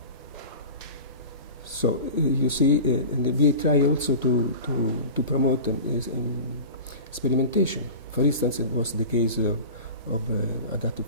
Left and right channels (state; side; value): inverted; both; correlation -0.34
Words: So you see, and we try also to promote experimentation. For instance, it was the case of adaptive